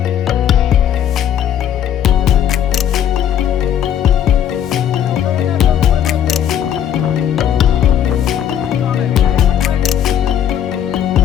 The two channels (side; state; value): right; quieter; 9.7 dB